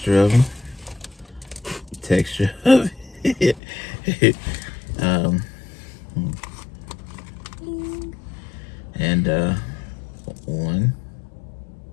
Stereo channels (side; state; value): right; drops out; at 3.6 s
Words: of them. And 1,